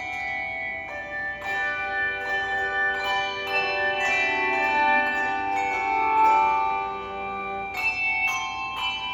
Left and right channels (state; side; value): identical; both; correlation 1.00